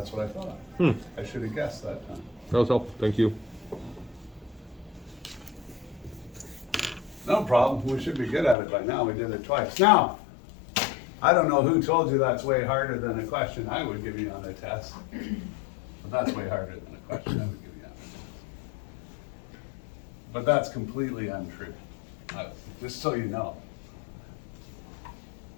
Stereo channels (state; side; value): drops out; right; at 8.6 s